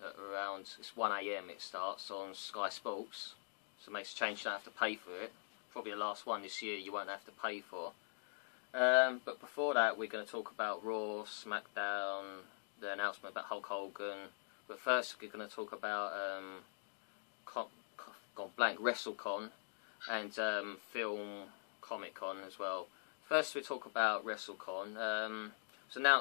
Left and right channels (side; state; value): right; silent; digital silence